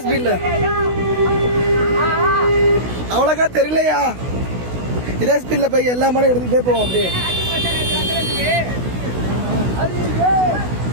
ஸ்பீட்ல அவ்வளோக்கா தெரியலையா இதே ஸ்பீட்ல போய் எல்லா மாடும் எடுத்துக்கிட்டே போவோம் அப்படியே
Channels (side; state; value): left; late; 16 ms